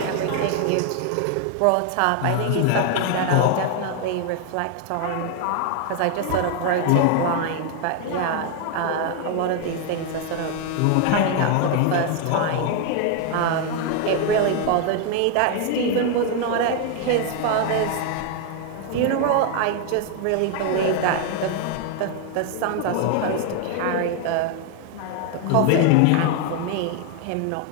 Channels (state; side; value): different; both; correlation 0.01